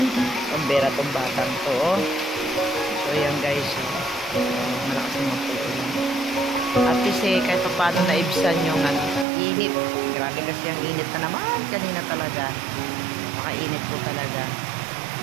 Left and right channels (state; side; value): drops out; left; at 9.2 s